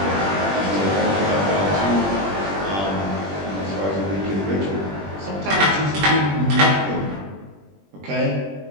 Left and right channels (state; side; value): late; left; 21 ms